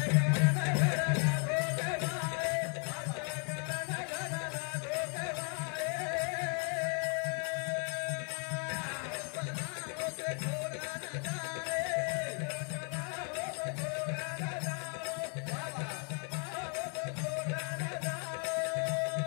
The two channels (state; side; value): quieter; right; 39.7 dB